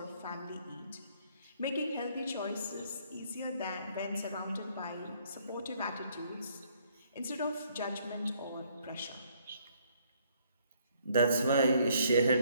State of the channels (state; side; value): inverted; both; correlation -0.66